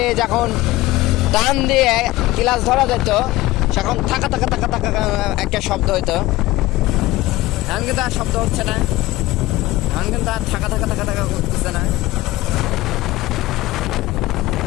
যখন টান দিয়ে ক্লাচ ধরা যেত সেখন থাকা থাকা থাকা থাকা একটা শব্দ হইতো। এখন কিন্তু আর শব্দ হচ্ছে না, এখন কিন্তু আর থাকা থাকা থাকা থাকা করতেছে না।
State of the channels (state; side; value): quieter; right; 18.1 dB